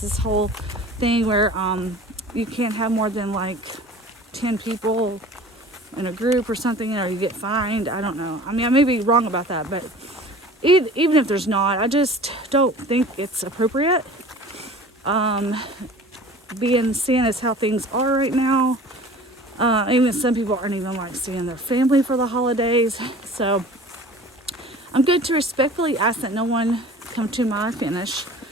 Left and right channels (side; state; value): both; normal; correlation 0.43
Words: whole thing where you can't have more than like 10 people in a group or something, or you get fined. I don't know. I mean, I may be wrong about that, but even if there's not, I just don't think it's appropriate. Seeing as how things are right now, even some people aren't even like seeing their family for the holidays. So I'm going to respectfully ask that no one come to my finish.